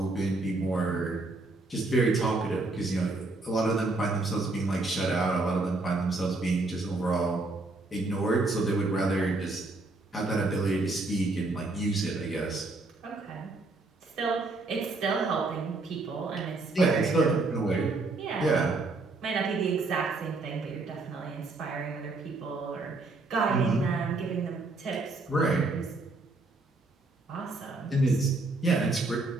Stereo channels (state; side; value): quieter; left; 3.2 dB